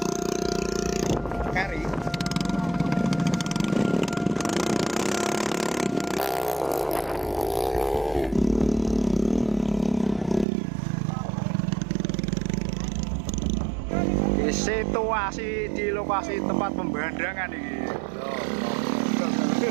Kari. Situasi di lokasi tempat pembandangan ini.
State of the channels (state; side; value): drops out; left; at 10.5 s